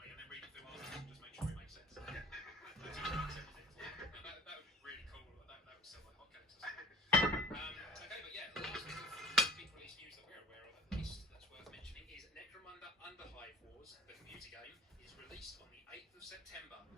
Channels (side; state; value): both; normal; correlation 0.45